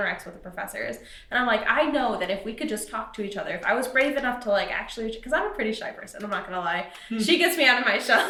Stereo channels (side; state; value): both; identical; correlation 1.00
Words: with the professors. And I'm like, I know that if we could just talk to each other, if I was brave enough to like actually, because I'm a pretty shy person, I'm not gonna lie. She gets me out of my